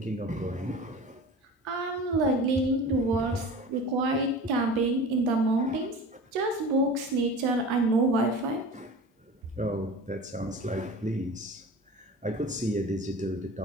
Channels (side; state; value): both; normal; correlation 0.36